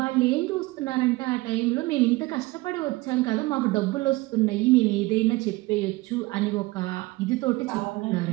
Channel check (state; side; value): quieter; left; 21.2 dB